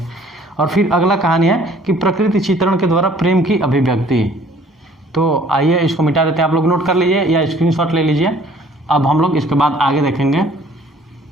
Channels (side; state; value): both; normal; correlation 0.56